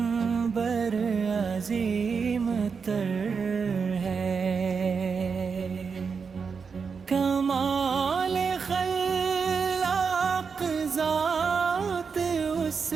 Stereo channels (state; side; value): quieter; left; 5.6 dB